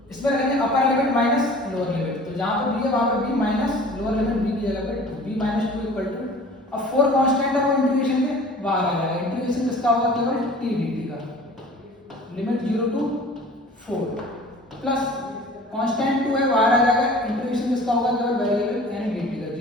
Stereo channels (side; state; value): both; normal; correlation 0.45